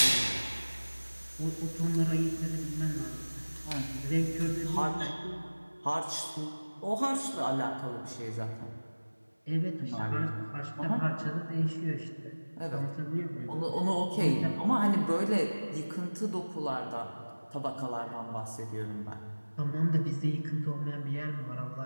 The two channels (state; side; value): inverted; both; correlation -1.00